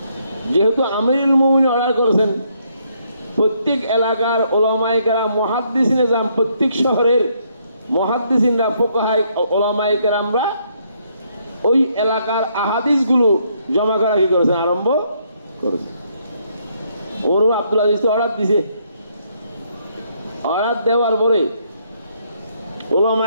যেহেতু আমিরুল মুমিনিন অর্ডার করেছেন, প্রত্যেক এলাকার উলামায়ে কেরাম মুহাদ্দিসিনে যান, প্রত্যেক শহরের মুহাদ্দিসিনরা ফুকাহায়ে উলামায়ে কেরামরা ওই এলাকার আহাদিসগুলো জমা করা কি করেছেন, আরম্ভ করেছেন। ওমর ইবনে আব্দুল আজিজ অর্ডার দিয়েছে, অর্ডার দেওয়ার পরে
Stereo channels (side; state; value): both; inverted; correlation -0.72